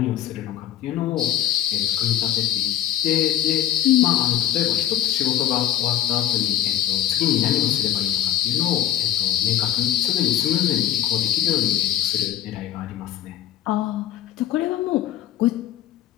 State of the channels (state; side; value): quieter; right; 11.9 dB